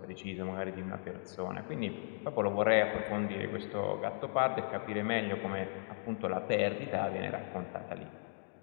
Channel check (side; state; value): right; silent; digital silence